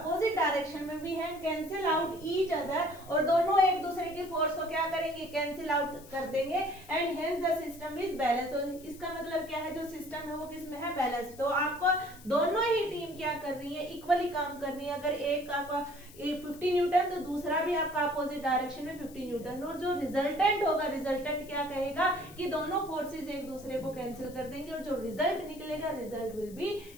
डायरेक्शन में भी है, कैंसिल आउट ईच अदर, और दोनों एक दूसरे की फोर्स को क्या करेंगे, कैंसिल आउट कर देंगे। And hence the system is balance. तो इसका मतलब क्या है, जो सिस्टम है वो किसमें है, बैलेंस। तो आपको दोनों ही टीम क्या कर रही है, इक्वली काम कर रही है। अगर एक आपका 50 न्यूटन तो दूसरा भी आपका अपोजिट डायरेक्शन में 50 न्यूटन, और जो रिजल्टेंट होगा, रिजल्टेंट क्या कहेगा कि दोनों फोर्सेस एक दूसरे को कैंसिल कर देंगे, और जो रिजल्ट निकलेगा result will be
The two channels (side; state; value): left; noise; hiss, 21 dB below the sound